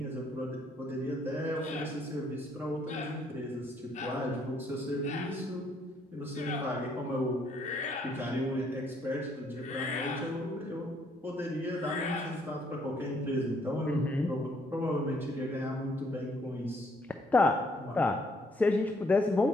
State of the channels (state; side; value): normal; both; correlation 0.68